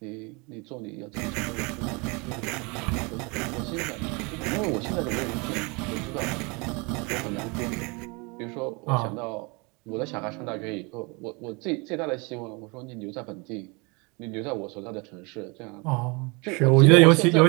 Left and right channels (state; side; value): quieter; left; 29.2 dB